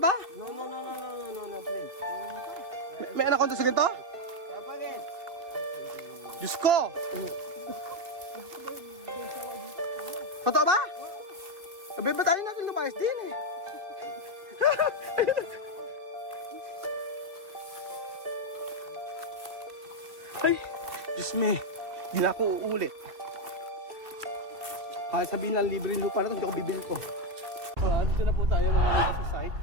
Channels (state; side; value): late; left; 2.4 ms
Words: ba? No, please. May anaconda sa ganito? Kapagin. Diyos ko! Totoo ba? Sabi ba tayo natin lumayas din eh? Ay, Diyos me, di na ako uulit. Kahit sabihin lang libre yung lupa na ito, hindi ako bibili ko. Dito na po tayo mga amigo sa site.